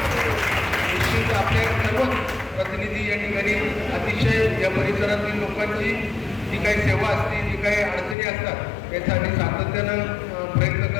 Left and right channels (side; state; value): right; drops out; at 8.2 s